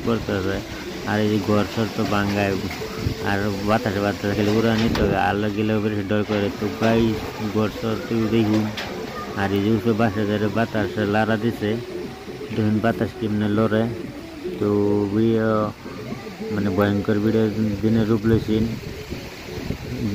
করতেছে। আর এই যে ঘর সর তো বাঙ্গায়, আর বাতাসে বাতাসে খেলে উড়া নিতে হবে, আলো গেলেও বেশি ডর করে। তো গাই ঘর সর তুই দেখুন, আর এই যে উপরে বাসা ধরে বাতাসে লাড়া দিছে, দেখুন বাতাস কেমনে লড়ে। তো মানে ভয়ঙ্কর ভিডিও দিনের রূপ লইছেন,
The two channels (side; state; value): both; identical; correlation 1.00